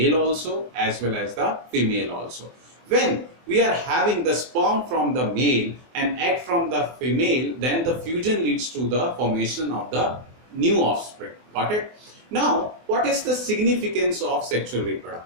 also as well as the female also. When we are having the sperm from the male and egg from the female, then the fusion leads to the formation of the new offspring. Got it? Now, what is the significance of sexual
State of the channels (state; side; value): late; left; 24 ms